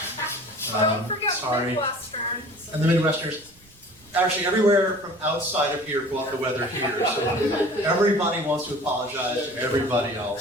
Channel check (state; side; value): noise; right; rumble, 28 dB below the sound